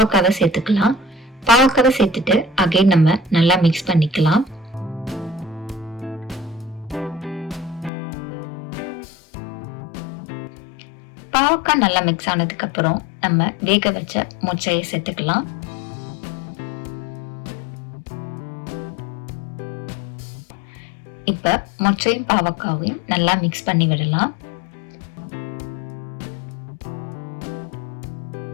சேர்த்துக்கலாம். பாவக்காவை சேர்த்துட்டு அகைன் நம்ம நல்லா மிக்ஸ் பண்ணிக்கலாம். பாவக்காய் நல்லா மிக்ஸ் ஆனதுக்கு அப்புறம் நம்ம வேக வச்ச மொச்சையை சேர்த்துக்கலாம். இப்ப மொச்சையும் பாவக்காவையும் நல்லா மிக்ஸ் பண்ணி விடலாம்.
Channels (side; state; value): right; drops out; at 7.9 s